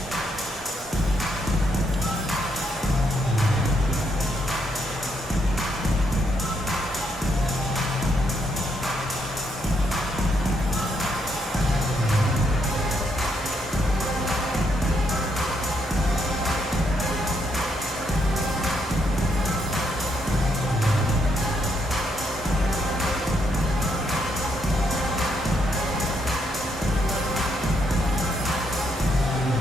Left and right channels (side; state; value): both; normal; correlation 0.76